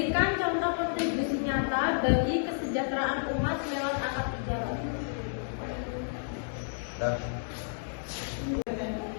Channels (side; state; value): right; silent; digital silence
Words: contoh kontribusi nyata bagi kesejahteraan umat lewat akad tijarah.